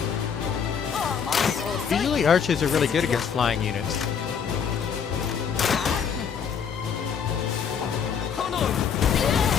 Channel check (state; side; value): quieter; right; 7.0 dB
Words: Usually archers are really good against flying units.